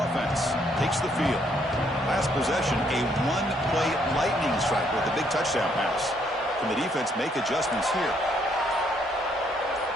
takes the field. Last possession, a one-play lightning strike with a big touchdown pass. Can the defense make adjustments here?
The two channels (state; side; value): normal; both; correlation 0.70